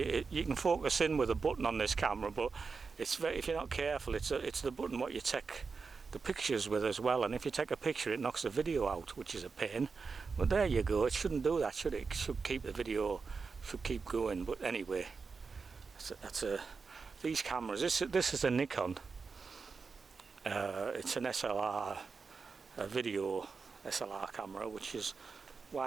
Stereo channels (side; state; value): left; quieter; 4.9 dB